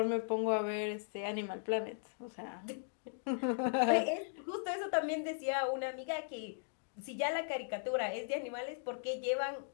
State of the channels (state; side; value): silent; right; digital silence